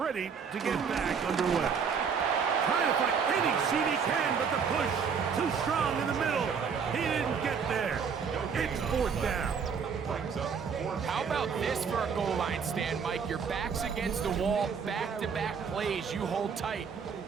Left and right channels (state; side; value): quieter; left; 6.3 dB